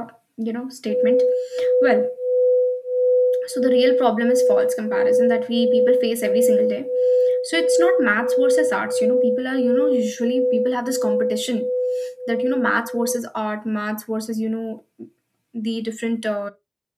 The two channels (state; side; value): identical; both; correlation 1.00